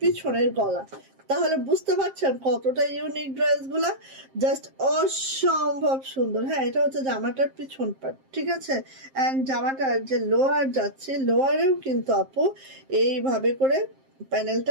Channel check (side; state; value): left; late; 7.5 ms